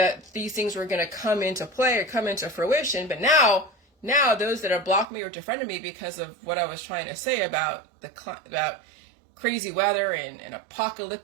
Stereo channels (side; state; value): left; drops out; at 5.1 s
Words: these things were going to come into play or come into fruition. But now those that have blocked me or defriended me because of what I was trying to say about about crazy weather and